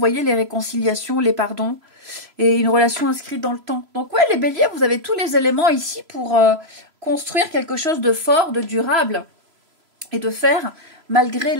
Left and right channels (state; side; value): late; left; 3.0 ms